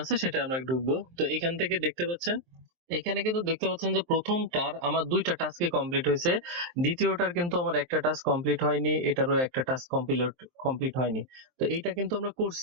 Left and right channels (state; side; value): late; left; 23 ms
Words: আছে সেটা আমরা ঢুকবো। তো এখান থেকে দেখতে পাচ্ছেন এখানে কিন্তু দেখতে পাচ্ছেন যে প্রথমটার আমার ২ টা টাস্কই কমপ্লিট হয়েছে। দ্বিতীয়টার কিন্তু আমার একটা টাস্ক কমপ্লিট হয়নি, এটারও একটা টাস্ক কমপ্লিট হয়নি। তো এইটা কিন্তু আমরা